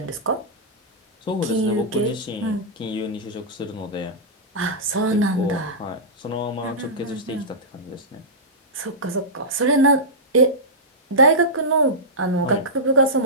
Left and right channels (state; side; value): normal; both; correlation -0.14